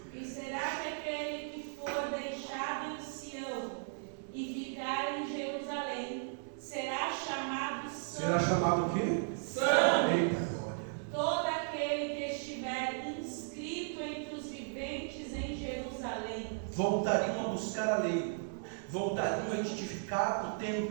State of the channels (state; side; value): silent; left; 54 dB below the other